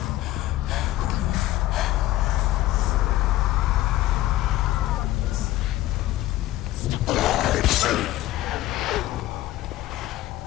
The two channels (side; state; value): right; quieter; 15.7 dB